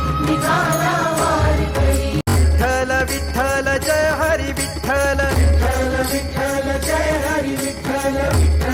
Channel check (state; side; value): identical; both; correlation 1.00